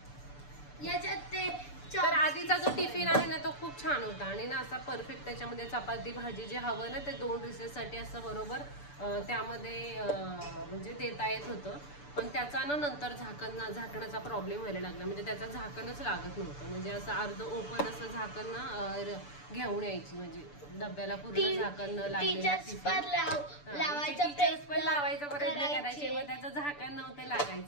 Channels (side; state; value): right; late; 6.9 ms